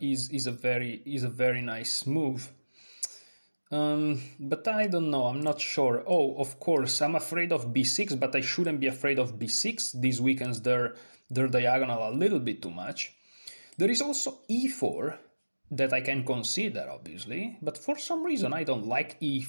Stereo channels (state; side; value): inverted; both; correlation -1.00